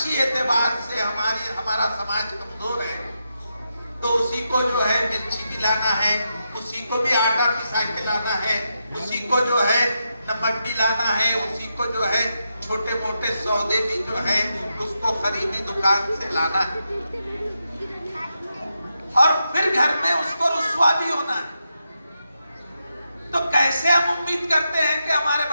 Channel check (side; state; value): both; inverted; correlation -0.85